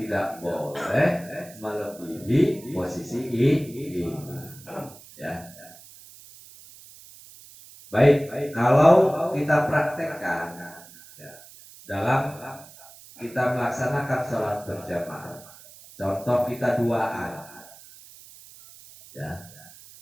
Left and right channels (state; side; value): noise; right; hiss, 20 dB below the sound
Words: boleh melebihi posisi imam. Ya. Baik, kalau kita praktekkan dalam kita melaksanakan sholat berjamaah, contoh kita duaan, ya,